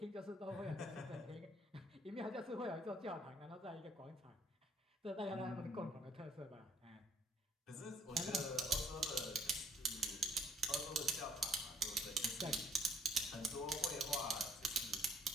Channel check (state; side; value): normal; both; correlation 0.64